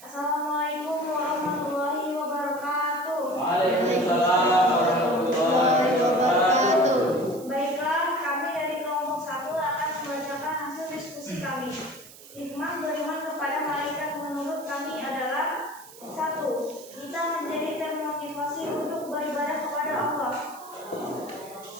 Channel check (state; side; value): noise; right; hiss, 19 dB below the sound